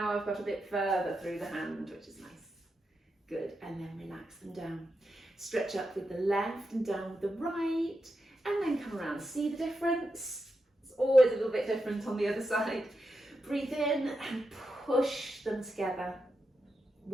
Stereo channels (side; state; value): both; normal; correlation 0.87